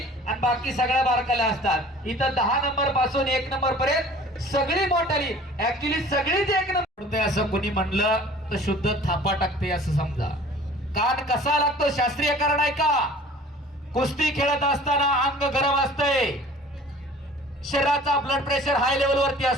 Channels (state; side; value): normal; both; correlation 0.47